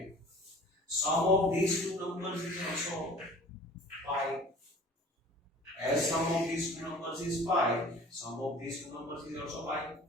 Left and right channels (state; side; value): normal; both; correlation 0.45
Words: sum of these two numbers is also pi. As sum of these two numbers is pi, sum of these two numbers is also pi.